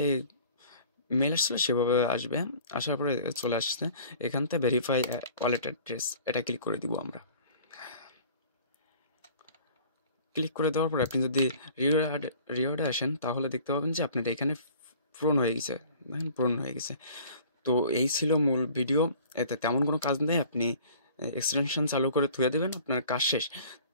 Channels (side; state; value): both; inverted; correlation -0.48